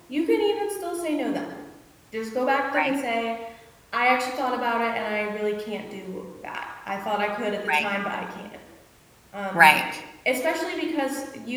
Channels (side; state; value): both; identical; correlation 1.00